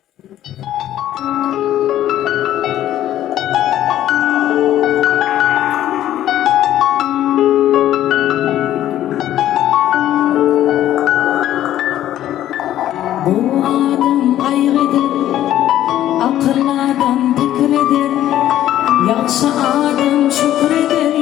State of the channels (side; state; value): right; quieter; 12.5 dB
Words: Bu adam kaygıdır, akıllı adam fikridir, yaxşı adam şükreder,